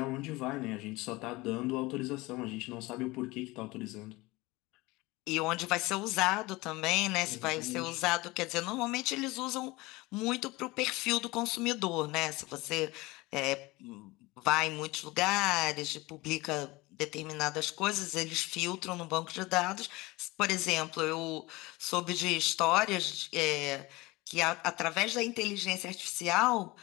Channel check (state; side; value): quieter; right; 21.8 dB